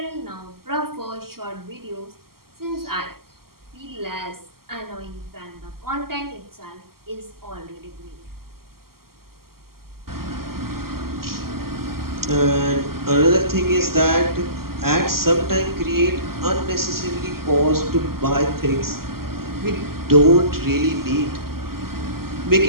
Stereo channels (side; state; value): left; late; 0.93 ms